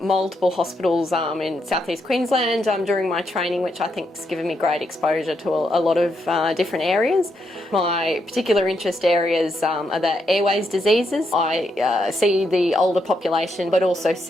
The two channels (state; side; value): normal; both; correlation 0.80